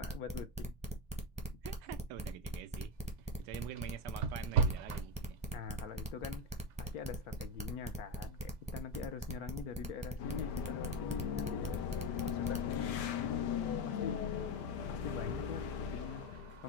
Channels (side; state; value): both; normal; correlation 0.11